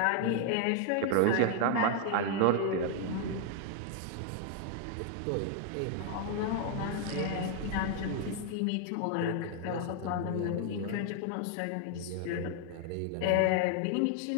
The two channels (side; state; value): both; different; correlation 0.00